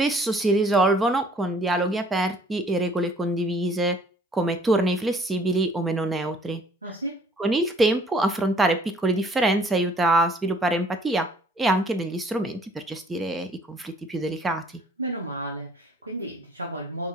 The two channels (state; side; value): normal; both; correlation 0.57